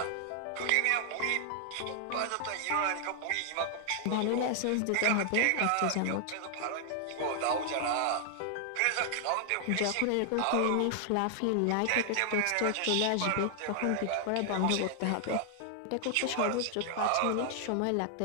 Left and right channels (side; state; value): both; different; correlation 0.00